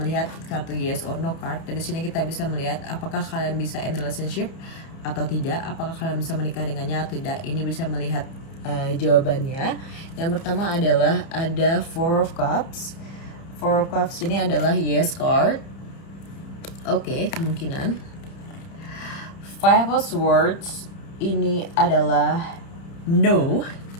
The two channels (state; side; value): late; right; 30 ms